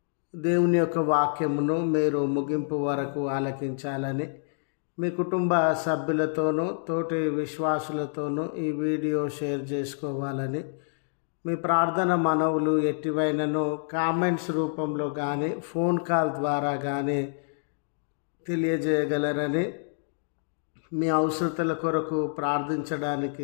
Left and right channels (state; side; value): silent; right; digital silence